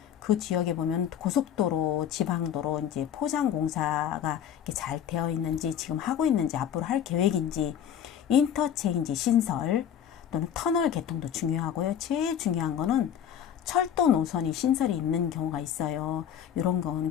그 지역에 보면 고속도로, 지방도로, 이제 포장공사가 잘 되어 있는지, 지금 하고 있는지, 앞으로 할 계획인지, 인터체인지 신설 또는 터널 개통도 중요하고요. 제일 중요한 거는 철도 노선이 신설이 있는 경우가 있어요. 이런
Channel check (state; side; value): quieter; right; 9.3 dB